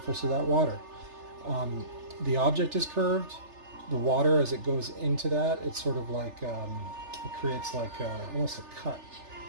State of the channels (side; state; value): left; late; 3.3 ms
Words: of that water. The object is curved. The water, as it goes into that, it's sort of like, it creates like almost a cut.